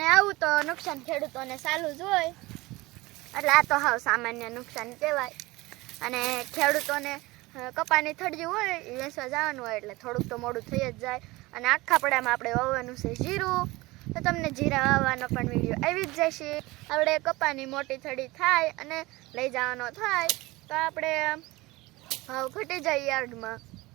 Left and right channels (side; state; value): left; quieter; 21.2 dB